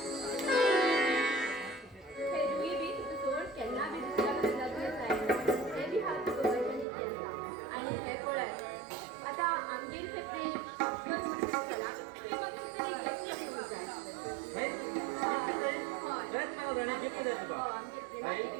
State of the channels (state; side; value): drops out; left; at 6.9 s